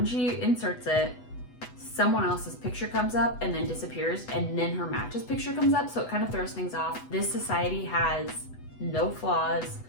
she inserts it, someone else's picture comes up and then disappears, and then her match's picture comes up, so it kind of throws things off. This society has no flaws,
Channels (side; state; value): right; late; 8.1 ms